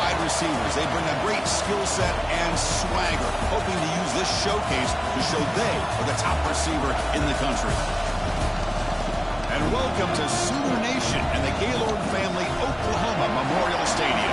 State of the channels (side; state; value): both; identical; correlation 1.00